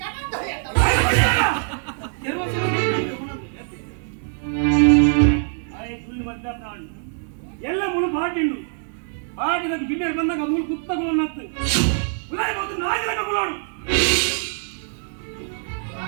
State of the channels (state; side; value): silent; left; 63 dB below the other